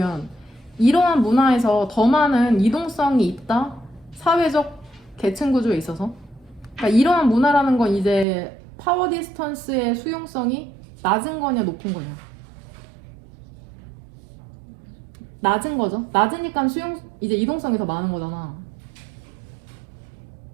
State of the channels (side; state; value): left; drops out; at 8.2 s